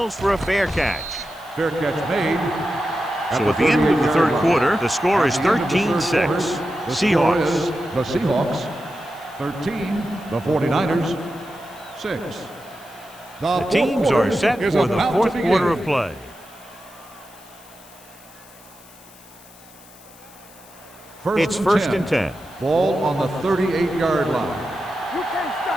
for a fair catch. Fair catch made. So at the end of the third quarter, the score is 13-6. Seahawks. The Seahawks 13, the 49ers 6. The teams are set for the fourth quarter of play. It's first and 10. Ball on the 38-yard line. You can't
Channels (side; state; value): left; noise; hiss, 23 dB below the sound